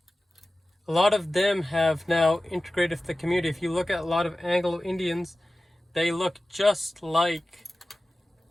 a lot of them have now integrated with the community. If you look at a lot of Anglo-Indians, they look just like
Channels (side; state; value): both; normal; correlation 0.96